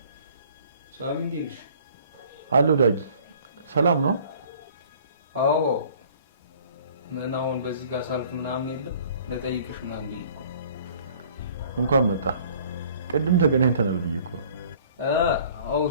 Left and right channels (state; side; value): inverted; both; correlation -0.53